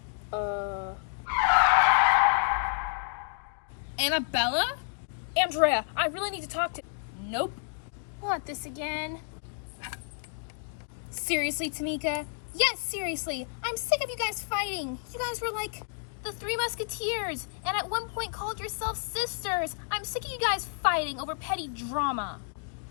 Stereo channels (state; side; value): silent; right; digital silence